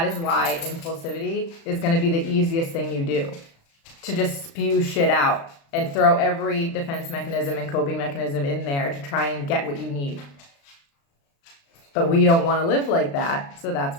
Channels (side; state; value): right; late; 36 ms